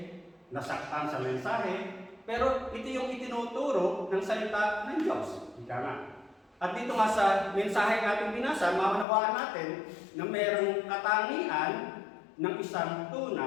nasaktan sa mensahe. Pero ito yung itinuturo ng salita ng Diyos. Ika nga. At dito nga sa mensahe natin binasa, maunawaan natin na mayroong katangian ng isang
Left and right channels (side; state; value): right; drops out; at 9.1 s